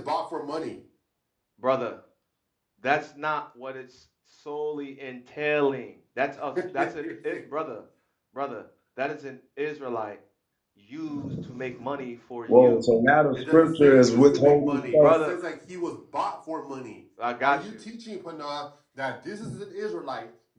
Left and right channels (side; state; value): both; identical; correlation 1.00